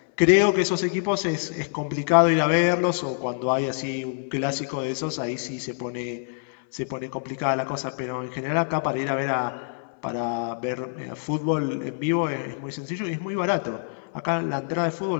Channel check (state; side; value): silent; right; 61 dB below the other